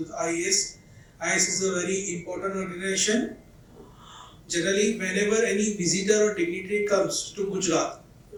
the iACE. iACE is a very important organization. Generally, whenever any visitor or dignitary comes to Gujarat,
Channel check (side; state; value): both; identical; correlation 1.00